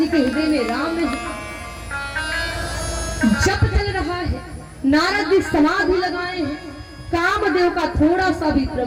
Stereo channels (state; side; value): identical; both; correlation 1.00